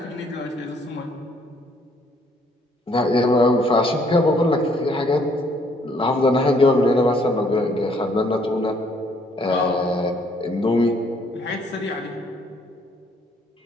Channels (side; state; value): both; normal; correlation 0.65